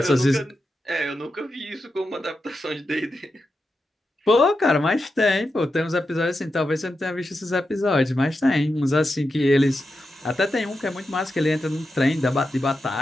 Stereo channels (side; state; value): both; normal; correlation 0.88